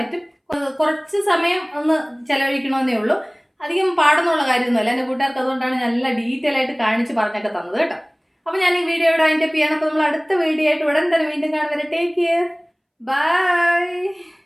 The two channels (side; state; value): both; identical; correlation 1.00